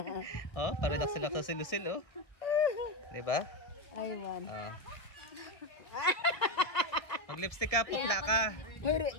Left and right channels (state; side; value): late; right; 1.3 ms